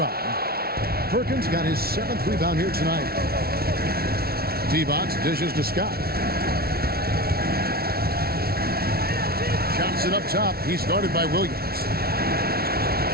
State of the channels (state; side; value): late; left; 0.44 ms